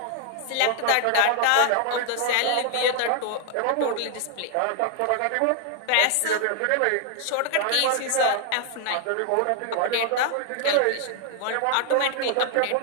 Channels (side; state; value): both; different; correlation 0.00